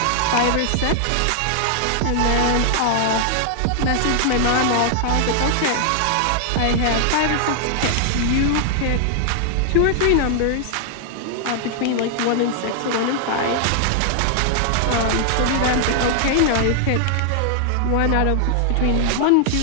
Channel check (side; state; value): both; different; correlation 0.00